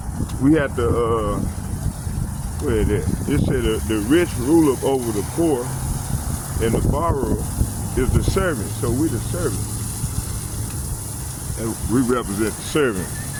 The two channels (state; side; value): identical; both; correlation 1.00